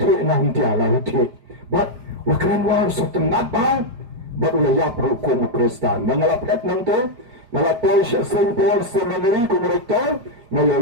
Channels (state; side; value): late; left; 5.0 ms